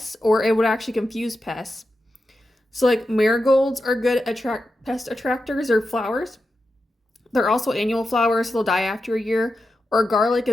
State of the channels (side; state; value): both; normal; correlation 0.89